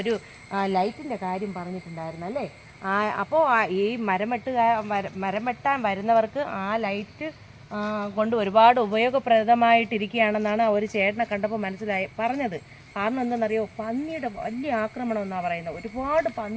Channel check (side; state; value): both; identical; correlation 1.00